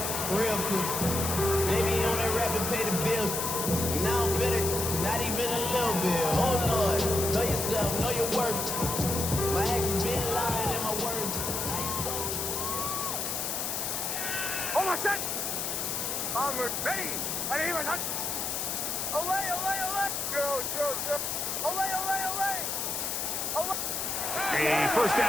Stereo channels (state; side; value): noise; left; hiss, 1 dB below the sound